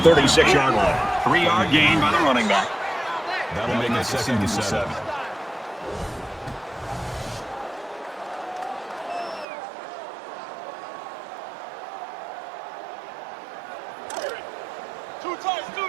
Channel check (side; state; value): left; drops out; at 9.5 s